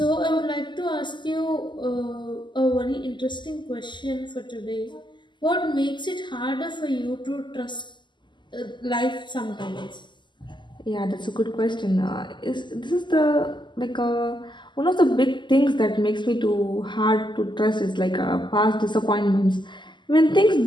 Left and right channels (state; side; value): late; right; 0.22 ms